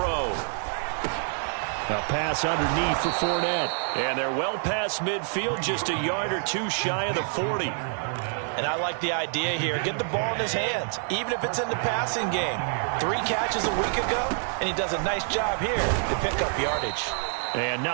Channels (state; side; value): silent; left; 59 dB below the other